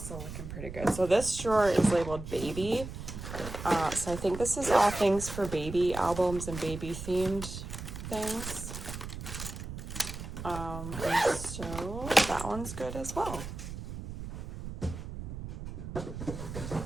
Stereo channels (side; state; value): right; noise; rumble, 9 dB below the sound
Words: looking pretty good. So this drawer is labeled baby. So I think this is all things for baby albums and baby themed things. And so that one's good as well. Okay,